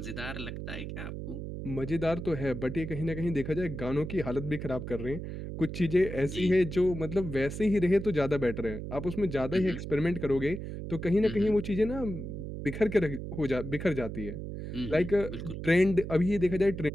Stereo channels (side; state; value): right; noise; hum, 7 dB below the sound